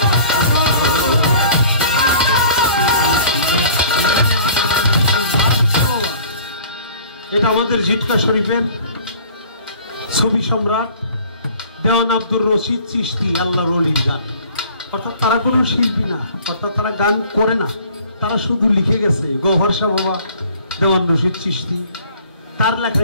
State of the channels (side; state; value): both; inverted; correlation -0.50